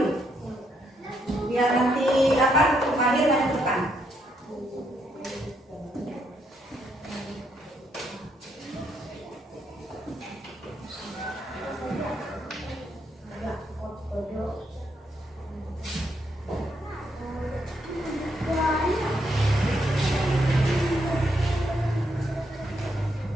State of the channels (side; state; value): both; normal; correlation 0.76